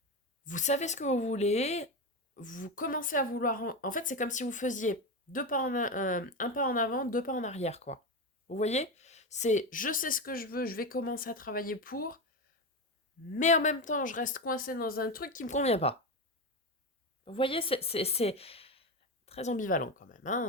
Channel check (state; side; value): normal; both; correlation 0.17